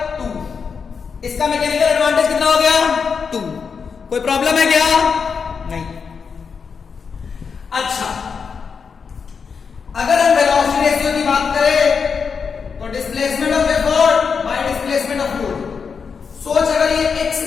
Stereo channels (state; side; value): quieter; right; 5.9 dB